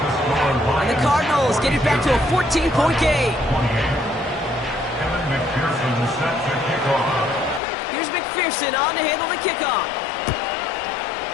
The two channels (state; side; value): drops out; right; at 7.6 s